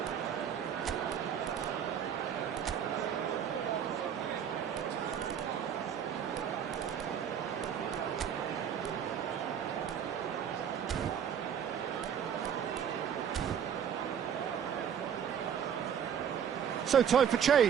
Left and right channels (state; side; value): quieter; left; 8.4 dB